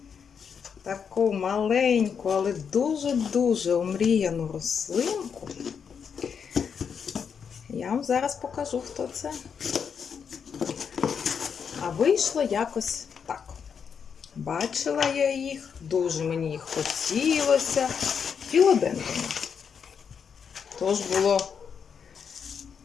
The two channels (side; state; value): right; quieter; 6.8 dB